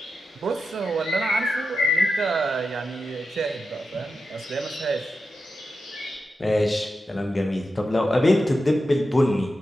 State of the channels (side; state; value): both; normal; correlation 0.90